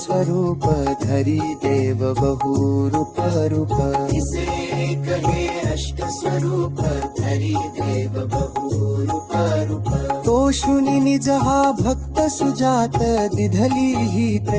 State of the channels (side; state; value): both; identical; correlation 1.00